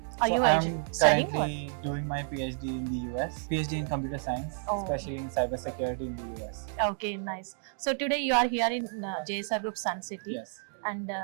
Are So you I'm studying or? currently doing my PhD in the US, PhD in computer science, Oh. especially in cybersecurity in the US. Okay, nice. So today you are here in JSR Group Sun City, Yes. and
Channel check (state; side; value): silent; left; 57 dB below the other